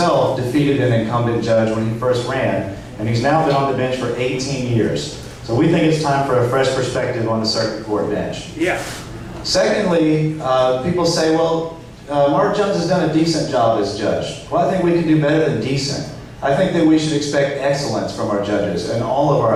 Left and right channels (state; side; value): identical; both; correlation 1.00